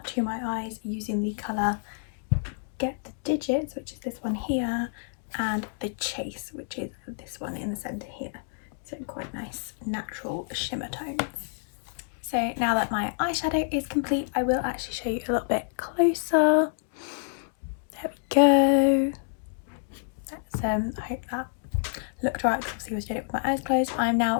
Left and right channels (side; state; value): right; silent; digital silence